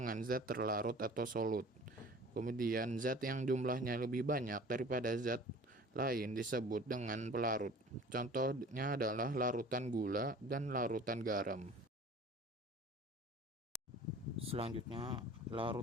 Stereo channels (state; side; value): normal; both; correlation 0.45